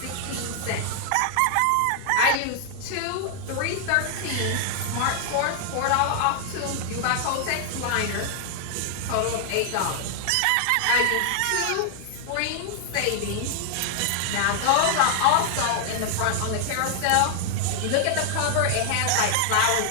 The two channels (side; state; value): both; different; correlation 0.00